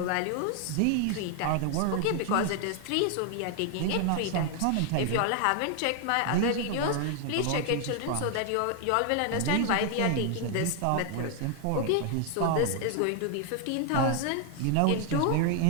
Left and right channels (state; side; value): different; both; correlation 0.00